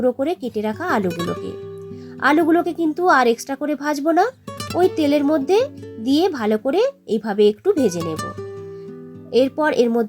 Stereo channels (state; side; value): identical; both; correlation 1.00